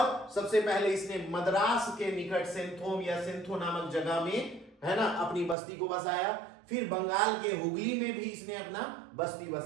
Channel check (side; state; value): left; drops out; at 5.6 s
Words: सबसे पहले इसने मद्रास के निकट सेंथोम या सेंथो नामक जगह में, है ना, अपनी बस्ती को बसाया। फिर बंगाल के हुगली में भी इसने अपना बस्ती